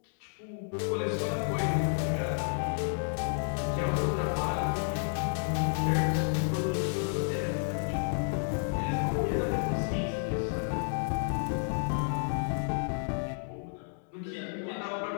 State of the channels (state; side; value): silent; right; digital silence